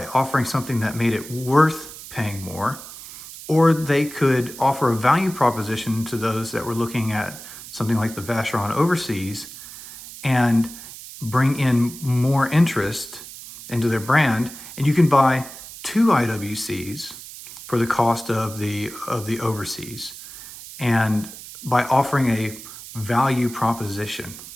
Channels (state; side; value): noise; right; hiss, 14 dB below the sound